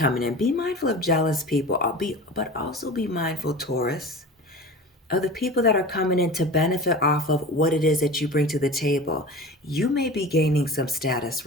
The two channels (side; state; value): both; normal; correlation 0.35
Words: in. Be mindful of jealous people, but also be mindful, Taurus, of the people that are coming in to benefit off of what it is that you bring to the table. You may be gaining some status